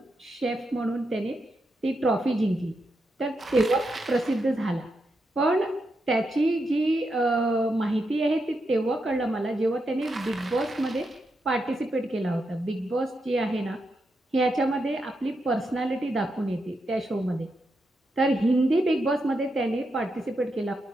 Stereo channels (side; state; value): both; normal; correlation 0.84